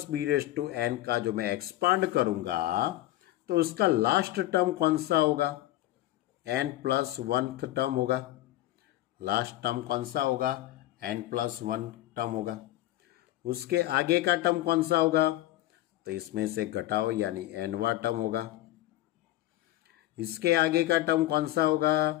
b raise to n का जो मैं एक्सपांड करूंगा तो उसका लास्ट टर्म कौन सा होगा n प्लस 1th टर्म होगा। लास्ट टर्म कौन सा होगा n प्लस 1 टर्म होगा। उसके आगे का टर्म कौन सा होगा तो इसमें से घटाओ यानी nवां टर्म होगा। इसके आगे का टर्म कौन सा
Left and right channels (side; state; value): right; quieter; 15.3 dB